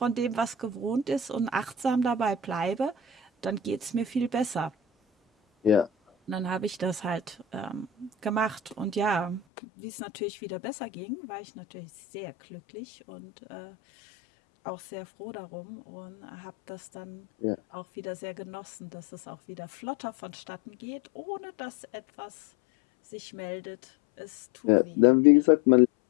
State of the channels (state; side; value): drops out; right; at 9.4 s